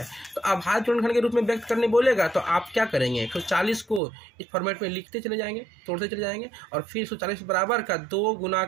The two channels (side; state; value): left; drops out; at 4.0 s